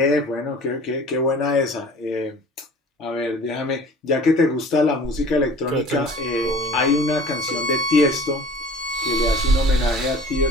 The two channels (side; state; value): both; normal; correlation 0.44